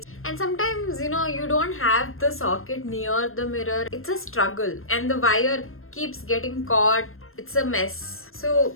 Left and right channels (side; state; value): right; late; 0.61 ms